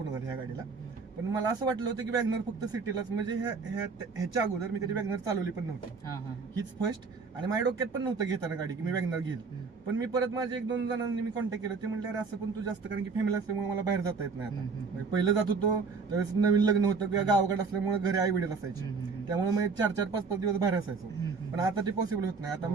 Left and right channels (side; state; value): left; quieter; 4.8 dB